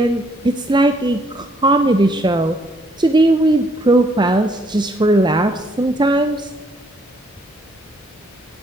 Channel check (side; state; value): both; normal; correlation 0.68